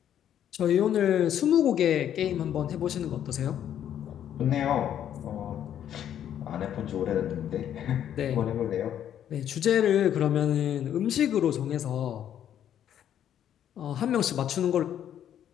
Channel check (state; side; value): quieter; right; 10.2 dB